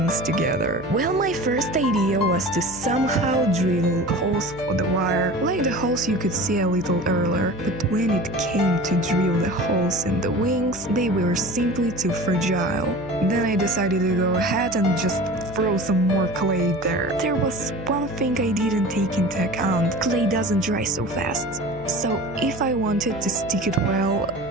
together. Well, my first idea was to somehow drill holes for the wire, like the holes you could see a little earlier, but when it came to drill the holes in the wings, they were simply too fragile. Then I decided to go ahead and just throw some more clay there. There was one thing I didn't take into account. Clay doesn't dry so fast. So if I wanted to stick it well,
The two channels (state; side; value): noise; left; hum, 16 dB below the sound